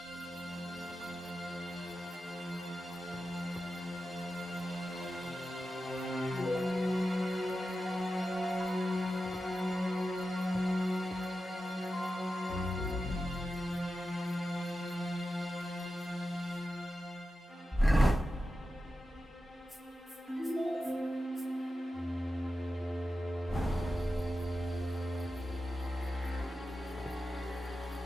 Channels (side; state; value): both; normal; correlation 0.92